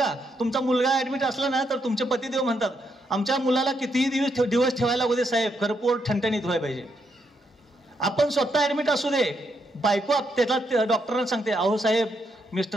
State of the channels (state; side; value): normal; both; correlation 0.78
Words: तुमचा मुलगा ऍडमिट असला ना तर तुमचे पतिदेव म्हणतात, आमच्या मुलाला कितीही दिवस ठेवायला लागू दे साहेब, खरं पोट ठणठणीत व्हायला पाहिजे. आपण स्वतः ऍडमिट असू दे, बायको त्याला डॉक्टरांना सांगते, अहो साहेब